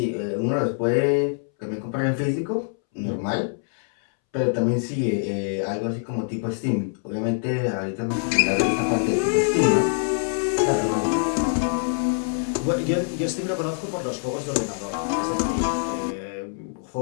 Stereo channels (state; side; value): silent; right; 62 dB below the other